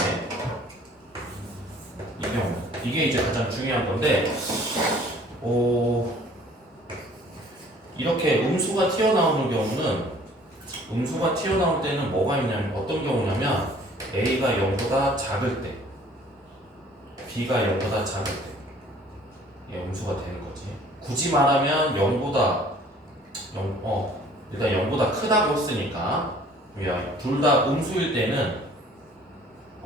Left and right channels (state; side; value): normal; both; correlation 0.54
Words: 이 경우. 이게 이제 가장 중요한 건데 이렇게 음수가 튀어나오는 경우는 음수가 튀어나올 때는 뭐가 있냐면 어떤 경우냐면 A가 0보다 작을 때 B가 0보다 작을 때 음수가 되는 거지. 굳이 말하면 0보다 일단 0보다 크다고 했으니까 둘 다 음수일